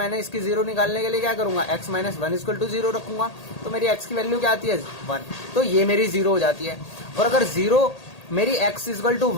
इसकी जीरो निकालने के लिए क्या करूंगा, x -1 इक्वल टू 0 रखूंगा। तो मेरी x की वैल्यू क्या आती है, 1। तो ये मेरी जीरो हो जाती है। और अगर जीरो मेरी x इक्वल टू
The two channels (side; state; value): right; late; 1.8 ms